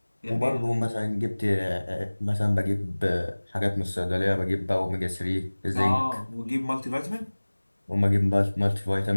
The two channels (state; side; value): inverted; both; correlation -1.00